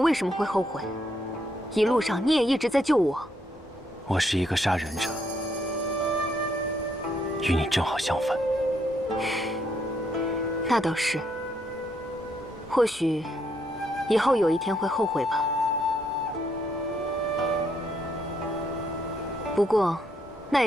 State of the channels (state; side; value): normal; both; correlation 0.74